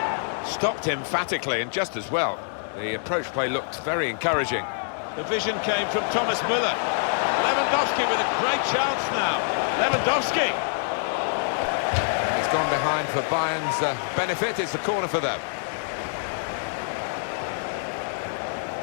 Stopped emphatically and just as well. The approach play looked very encouraging. The vision came from Thomas Müller. Lewandowski with a great chance now. Lewandowski! He's gone behind for Bayern's benefit. It's a corner for them.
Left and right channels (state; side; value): silent; right; digital silence